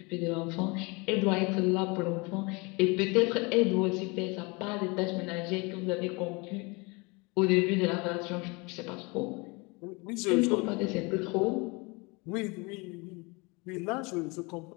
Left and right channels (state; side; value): quieter; right; 27.7 dB